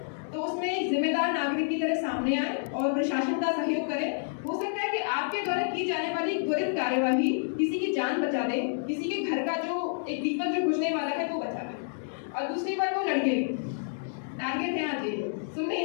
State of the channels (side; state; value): right; silent; digital silence